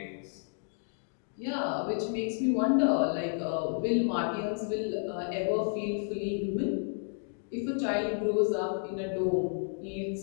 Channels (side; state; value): right; silent; 57 dB below the other